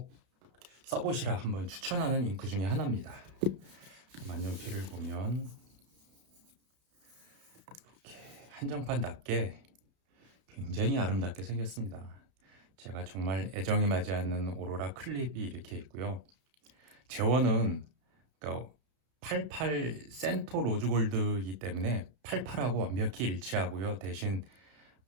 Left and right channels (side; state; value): left; late; 32 ms